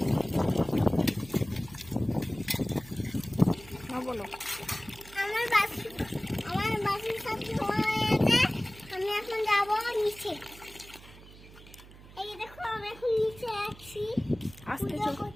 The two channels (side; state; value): right; noise; hum, 19 dB below the sound